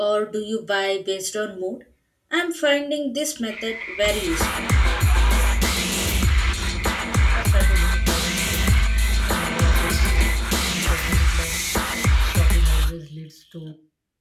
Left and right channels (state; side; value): identical; both; correlation 1.00